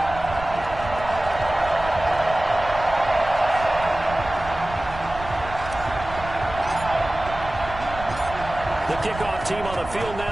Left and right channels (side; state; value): right; noise; rumble, 12 dB below the sound